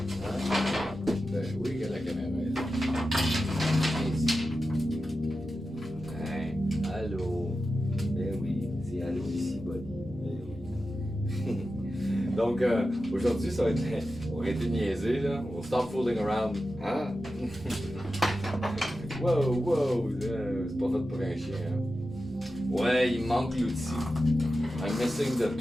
Ben oui, à la caméra. Allô? Ben oui, c'est c'est à ici, buddy. Donc, aujourd'hui, ça va être. On va arrêter de niaiser, là. On va stop fooling around. Hein? Wow, c'est pas fait pour un chien, hein? Ouais, il manque l'outil. I'm missing the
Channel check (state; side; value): normal; both; correlation 0.92